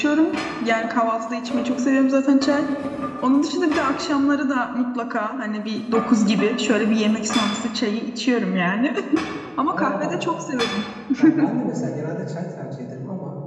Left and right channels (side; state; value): both; identical; correlation 1.00